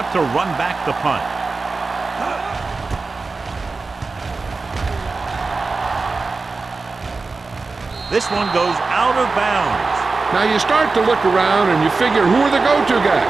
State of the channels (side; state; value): left; quieter; 3.9 dB